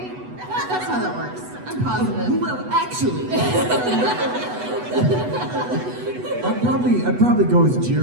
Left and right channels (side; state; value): left; late; 8.1 ms